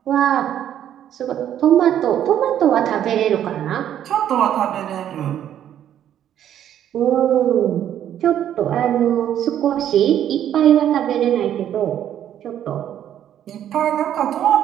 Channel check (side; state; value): left; quieter; 10.6 dB